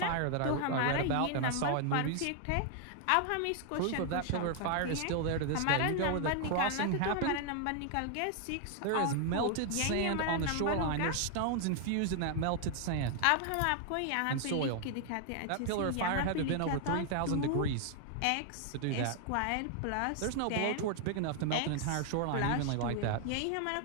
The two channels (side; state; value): both; different; correlation 0.00